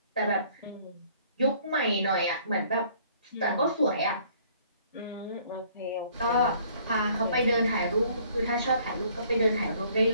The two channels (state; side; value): inverted; both; correlation -0.59